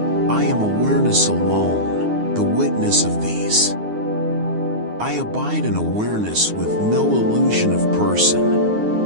I am awareness alone, the witness of these. I abide in awareness with no illusion of person.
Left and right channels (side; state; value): left; late; 9.6 ms